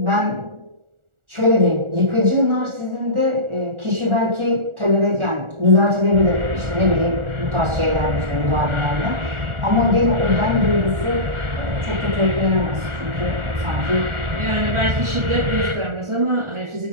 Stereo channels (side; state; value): left; late; 1.4 ms